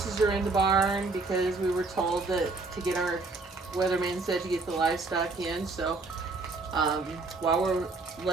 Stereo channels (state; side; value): quieter; left; 3.6 dB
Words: are in the barn because we were told that to get our weatherman said to get the livestock in. So um, while we're